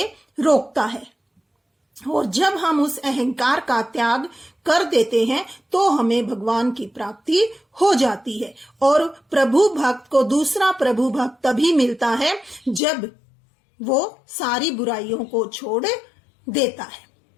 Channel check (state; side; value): drops out; right; at 12.8 s